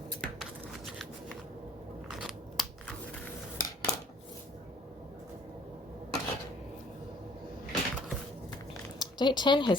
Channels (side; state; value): both; normal; correlation 0.57